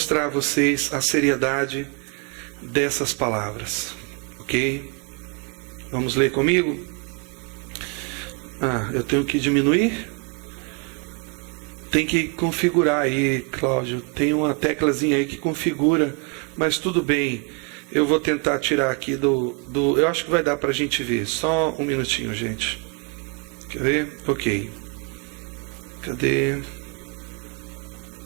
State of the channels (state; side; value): quieter; left; 33.6 dB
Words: a vocês a seriedade dessas palavras. Ok? Vamos ler comigo? Eu tenho que diminuir? Tem que configurar aí, Cláudio. Tem uma teclazinha aí que configura, mas tudo bem. Eu vou tentar tirar aqui eu acho que vai dar para a gente ver. Só um minutinho, gente. Quer ver? Ok. Cadê?